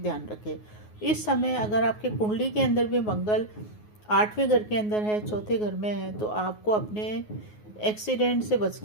रखें। इस समय अगर आपके कुंडली के अंदर भी मंगल 8वें घर के अंदर है, 4थे घर में है, तो आपको अपने एक्सीडेंट से बच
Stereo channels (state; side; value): late; right; 9.5 ms